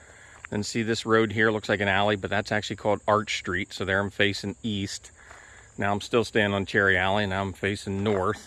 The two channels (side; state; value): both; identical; correlation 1.00